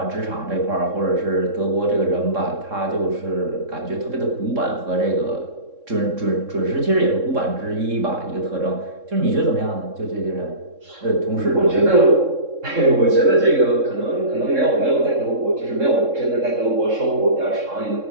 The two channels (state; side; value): late; left; 3.7 ms